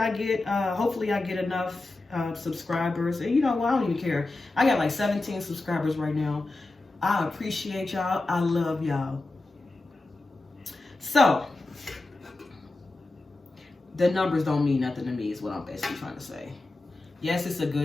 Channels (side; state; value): right; quieter; 3.0 dB